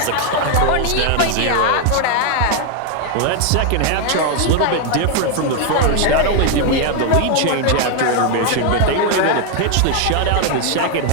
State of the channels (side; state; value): both; different; correlation 0.01